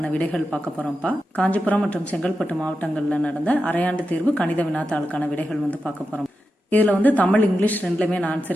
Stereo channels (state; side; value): normal; both; correlation 0.89